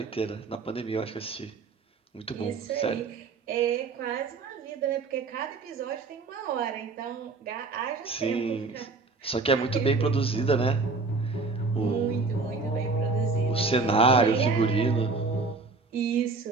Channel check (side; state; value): left; quieter; 4.1 dB